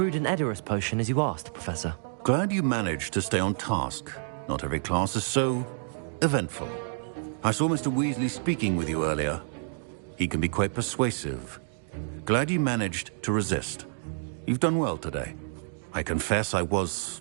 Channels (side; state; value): left; silent; digital silence